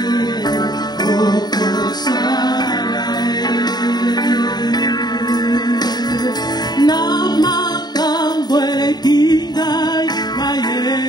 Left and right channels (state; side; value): late; right; 0.20 ms